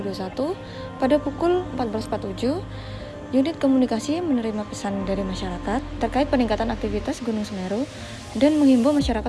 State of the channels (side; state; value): both; identical; correlation 1.00